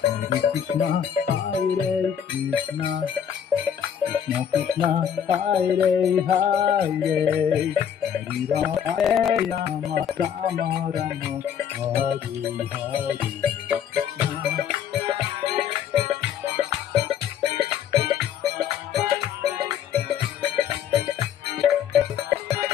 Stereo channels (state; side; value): quieter; right; 8.7 dB